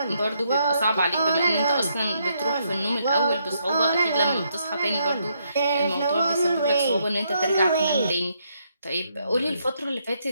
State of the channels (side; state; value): both; inverted; correlation -0.75